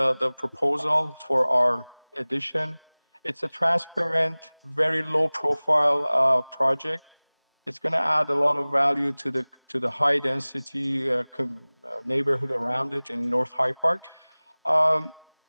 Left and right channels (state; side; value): inverted; both; correlation -1.00